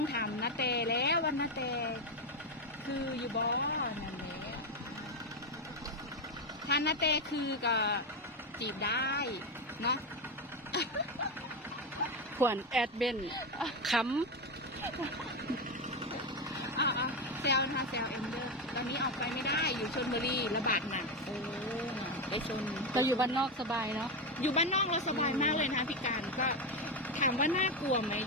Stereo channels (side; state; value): both; normal; correlation 0.11